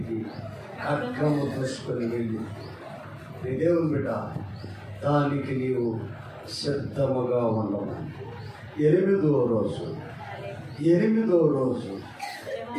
ఖడ్గము దూసుకొని వెళ్ళి నీ దేవుని బిడ్డ దానికి నీవు సిద్ధముగా ఉండవు. 8వ రోజు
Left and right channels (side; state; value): both; identical; correlation 1.00